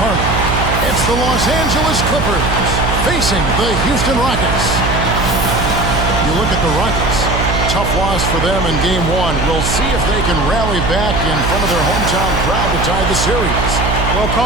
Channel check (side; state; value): right; noise; hum, 2 dB below the sound